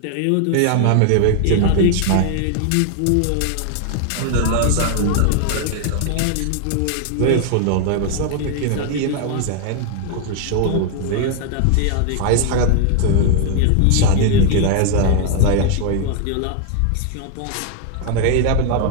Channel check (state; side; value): different; both; correlation 0.00